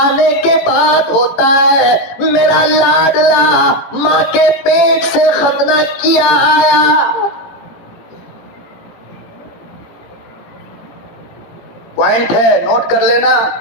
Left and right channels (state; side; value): late; right; 17 ms